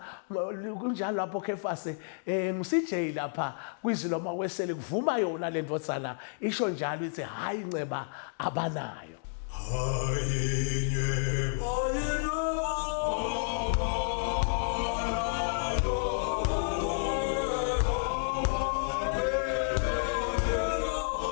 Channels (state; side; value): silent; right; digital silence